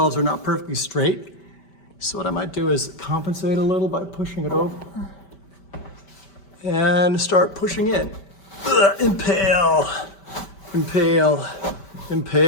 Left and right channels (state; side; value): late; right; 5.1 ms